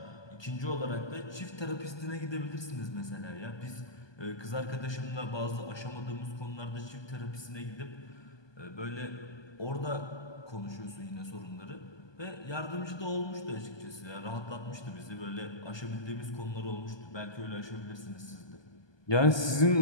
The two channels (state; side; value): late; right; 1.2 ms